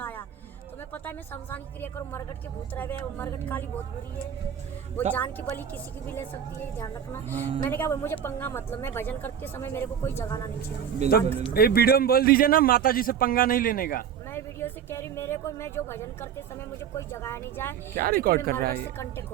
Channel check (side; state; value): left; quieter; 8.5 dB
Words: तुम्हें पता है मैं शमशान की क्रिया करूँ, मरगट के भूत रहे हुए, मरगट काली बहुत बुरी है, वो जान की बलि किसी की भी ले सकती है, ध्यान रखना। मैंने कहा मुझे पंगा मतलब, मैं भजन करते समय मेरे को कोई जगाना नहीं चाहिए। तो ये वीडियो में बोल दीजिए ना माता जी से पंगा नहीं लेने का। मैं वीडियो से कह रही मेरे को, मैं जो भजन करते समय मुझे कोई जगाया नहीं जाए। क्या रिकॉर्ड कर रहा है ये? कांटेक्ट